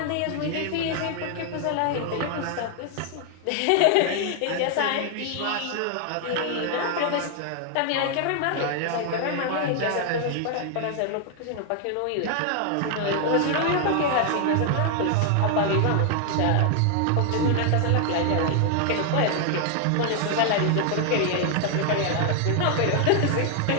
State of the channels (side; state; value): both; different; correlation 0.00